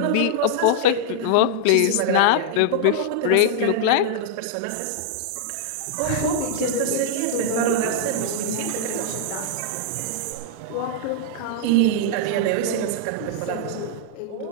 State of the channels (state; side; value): different; both; correlation -0.01